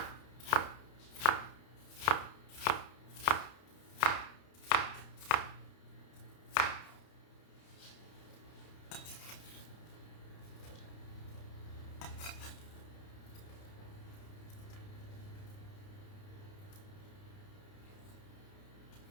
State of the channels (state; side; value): late; right; 30 ms